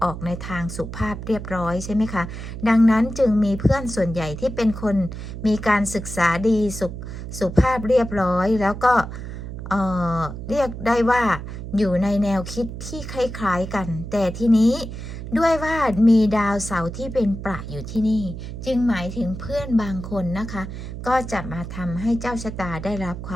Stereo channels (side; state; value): right; noise; hum, 9 dB below the sound